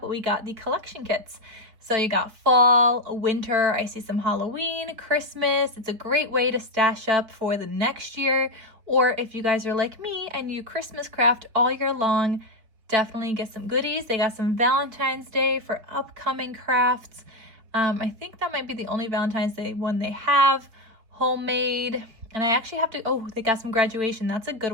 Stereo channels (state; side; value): late; left; 4.4 ms